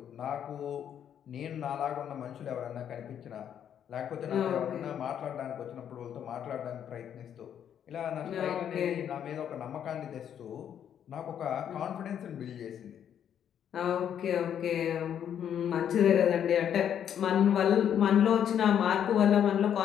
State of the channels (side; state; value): right; quieter; 9.2 dB